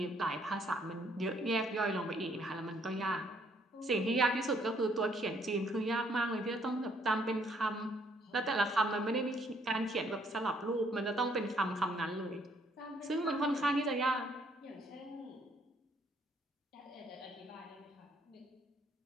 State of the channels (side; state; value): both; normal; correlation 0.67